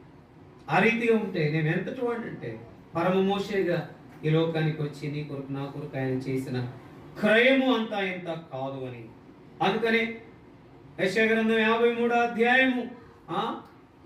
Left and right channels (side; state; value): both; identical; correlation 1.00